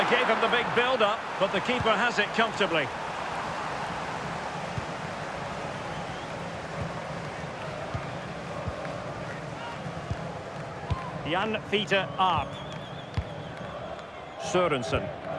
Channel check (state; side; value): identical; both; correlation 1.00